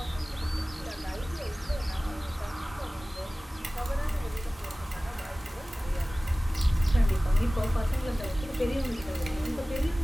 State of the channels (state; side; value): normal; both; correlation 0.97